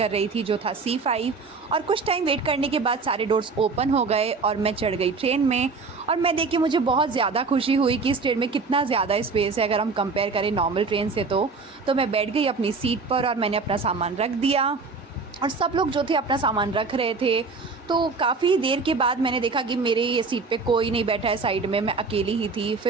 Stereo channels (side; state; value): left; quieter; 4.4 dB